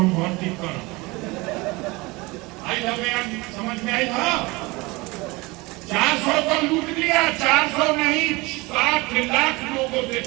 भर्ती कर आई हमें समझ में आई था। 400 को लूट लिया, 400 नहीं 60 लाख लोगों से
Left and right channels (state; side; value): quieter; left; 23.8 dB